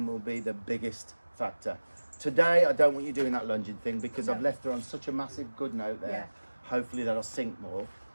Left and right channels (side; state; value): both; inverted; correlation -1.00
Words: will be the biggest factor. Today, I don't want you doing that lunging thing because I've left her on such a massive good note there. Yeah. Hopefully that'll sink more.